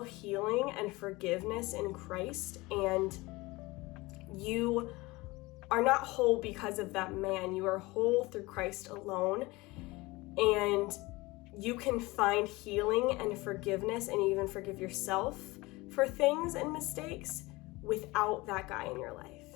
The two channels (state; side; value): quieter; right; 22.1 dB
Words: healing and forgiveness in Christ, and you are not whole because of that man. You are whole through Christ alone, and you can find healing and forgiveness and even forgive yourself for things and mistakes without that guy in your life,